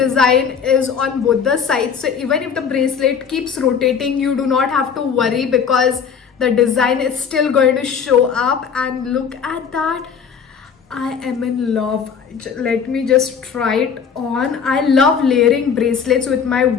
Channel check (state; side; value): quieter; right; 6.7 dB